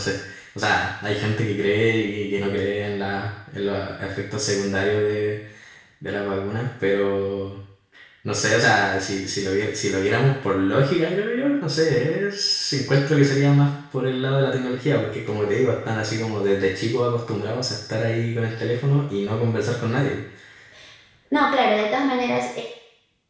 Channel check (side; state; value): both; identical; correlation 1.00